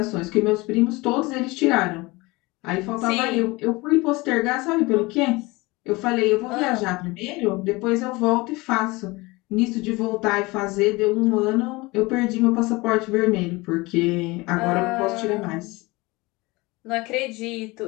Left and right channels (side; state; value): right; quieter; 23.1 dB